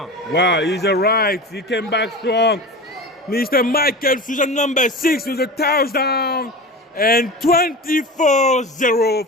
pass. Wow, he's all right. He came back strong. Mr. Michael Souza, number 6, with a touchdown. And 24-0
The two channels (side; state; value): both; normal; correlation 0.30